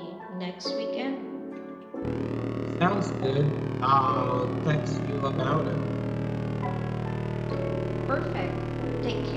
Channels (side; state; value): both; identical; correlation 1.00